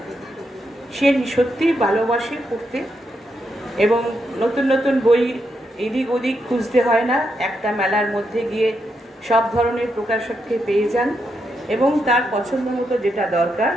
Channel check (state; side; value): normal; both; correlation 0.82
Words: সে সত্যি ভালোবাসে পড়তে এবং নতুন নতুন বই এদিক ওদিক খুঁজতে হয় না, একটা মেলার মধ্যে গিয়ে সব ধরনের প্রকাশককে পেয়ে যান এবং তার পছন্দ মতো যেটা দরকার